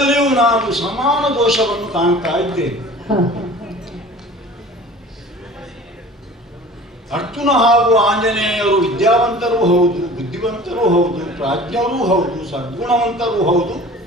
ನಾನು ಸಮಾನ ದೋಷವನ್ನು ಕಾಣ್ತಾ ಇದ್ದೇನೆ. ಅರ್ಜುನ ಹಾಗೂ ಆಂಜನೇಯರು ವಿದ್ಯಾವಂತರೂ ಹೌದು, ಬುದ್ಧಿವಂತರೂ ಹೌದು, ಪ್ರಾಜ್ಞರೂ ಹೌದು, ಸದ್ಗುಣವಂತರೂ ಹೌದು,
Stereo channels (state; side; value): normal; both; correlation 0.43